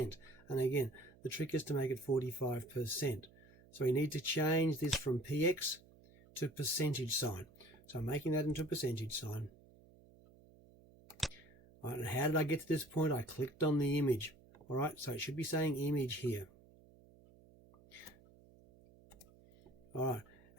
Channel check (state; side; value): noise; right; hum, 25 dB below the sound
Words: And again, the trick is to make it 45%. So we need to change this from px to percentage sign. So I'm making that into a percentage sign. All right, and how did I get to this point? I clicked on the image. All right, so it should be saying image here. All right,